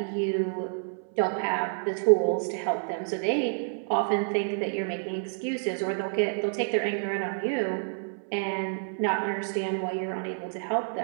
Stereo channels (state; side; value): silent; left; 59 dB below the other